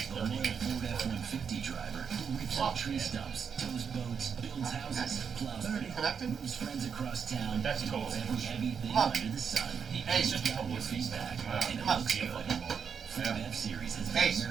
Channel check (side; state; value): left; quieter; 6.7 dB